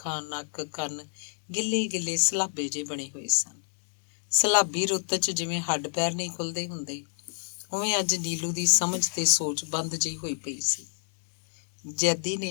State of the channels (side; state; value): right; silent; digital silence